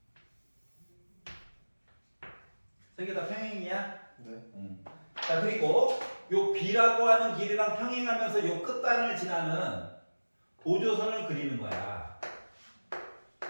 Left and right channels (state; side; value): inverted; both; correlation -1.00